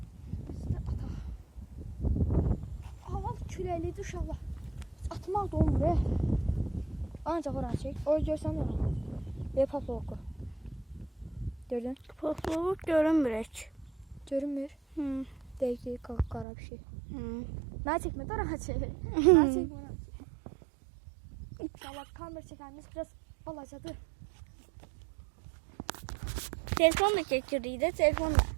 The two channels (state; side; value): drops out; left; at 16.4 s